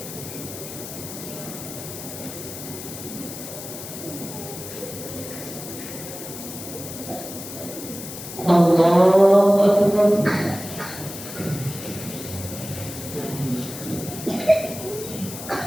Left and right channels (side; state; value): left; noise; hiss, 10 dB below the sound